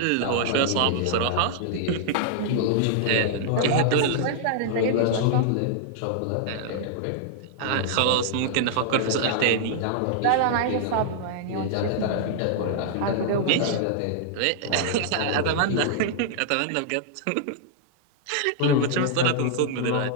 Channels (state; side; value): different; both; correlation -0.01